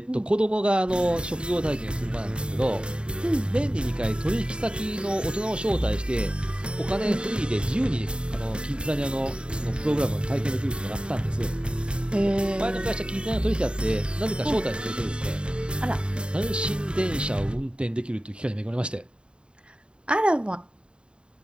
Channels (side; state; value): left; late; 0.053 ms